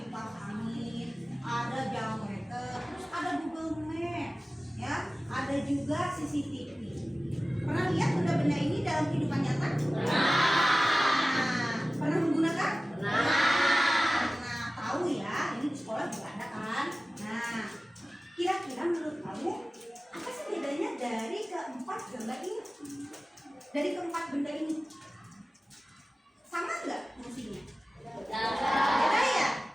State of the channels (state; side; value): normal; both; correlation 0.96